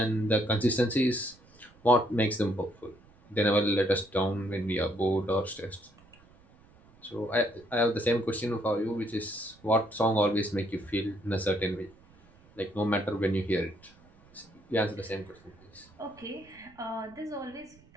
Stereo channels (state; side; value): noise; right; rumble, 27 dB below the sound